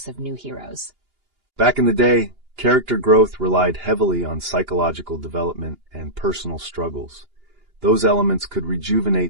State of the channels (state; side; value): late; left; 2.8 ms